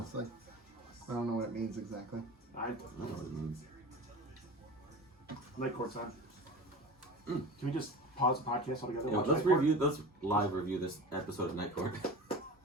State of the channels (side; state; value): both; normal; correlation 0.34